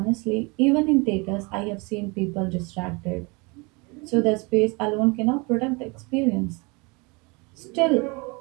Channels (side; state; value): left; quieter; 28.4 dB